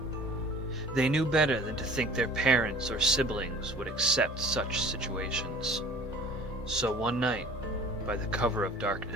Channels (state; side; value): normal; both; correlation 0.47